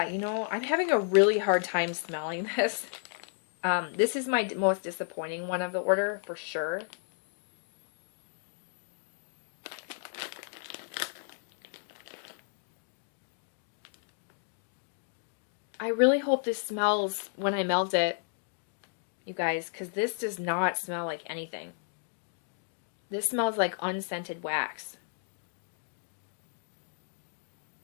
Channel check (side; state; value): right; silent; digital silence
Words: you know, I'm having a really hard time smelling this. This is my most disappointing one of the order, for sure. I really hope this smells when I melt it, you guys, because this does not smell like anything. This smells like unscented wax.